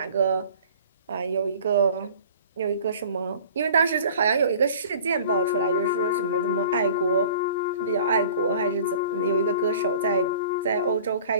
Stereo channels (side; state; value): both; inverted; correlation -0.46